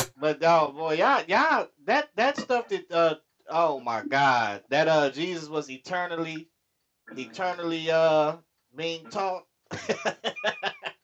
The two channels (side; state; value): both; identical; correlation 1.00